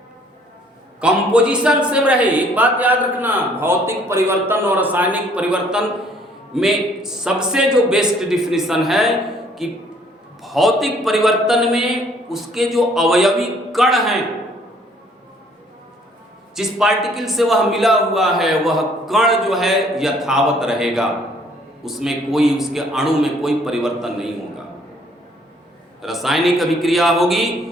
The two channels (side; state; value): both; normal; correlation 0.61